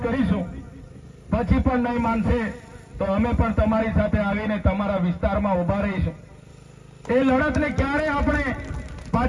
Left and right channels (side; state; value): both; identical; correlation 1.00